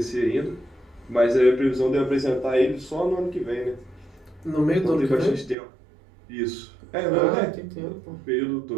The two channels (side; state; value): left; drops out; at 5.6 s